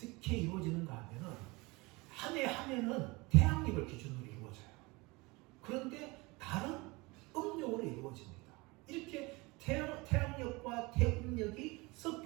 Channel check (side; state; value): left; quieter; 24.5 dB